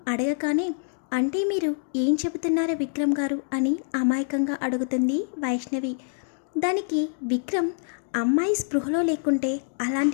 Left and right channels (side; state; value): right; silent; digital silence